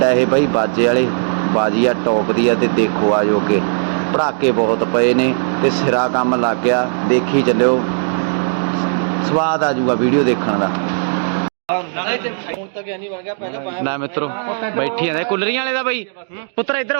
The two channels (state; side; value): silent; left; 67 dB below the other